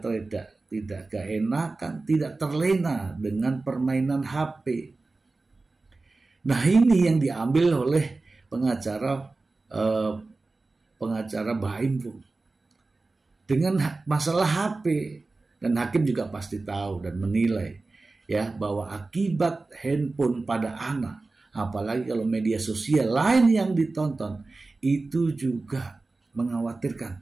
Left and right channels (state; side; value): quieter; left; 3.5 dB